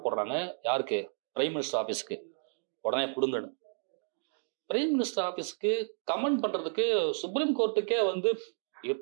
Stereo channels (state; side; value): silent; left; digital silence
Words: போடுறாங்க, யாருக்கு? பிரைம் மினிஸ்டர் ஆஃபீஸுக்கு. உடனே கொடுங்கன்னு. பிரைம் மினிஸ்டர் ஆஃபீஸுக்கு கமெண்ட் பண்றதுக்கு சுப்ரீம் கோர்ட்டுக்கே வந்து